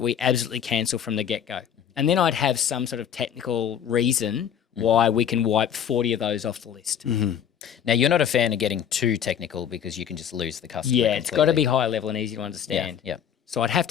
we absolutely cancel from the get-go. And then I'd have some sort of technical reason why we can wipe 40 of those off the list. Mm-hmm. Now, you're not a fan of getting too technical because you can just lose the customer. Yeah, it's got to be high level and easy to understand. Yeah. So I'd have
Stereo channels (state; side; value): quieter; right; 8.9 dB